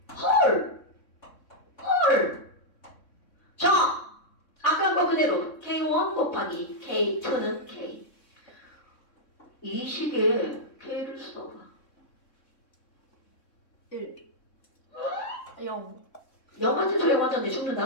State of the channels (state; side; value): late; right; 3.6 ms